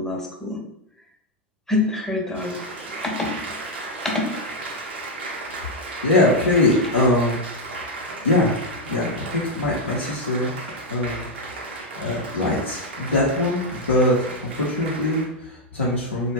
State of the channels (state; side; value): normal; both; correlation 0.01